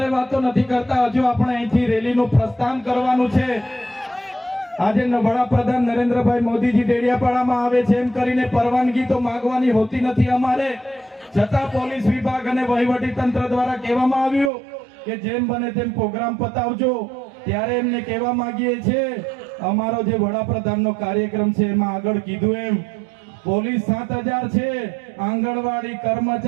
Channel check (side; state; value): left; drops out; at 14.5 s